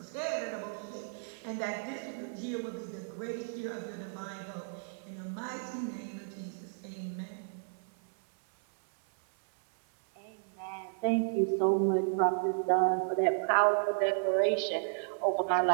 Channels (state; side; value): silent; left; 56 dB below the other